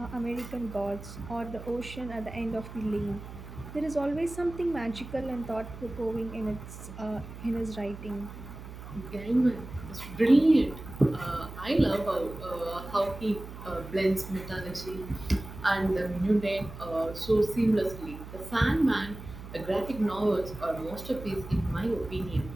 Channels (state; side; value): noise; right; hum, 13 dB below the sound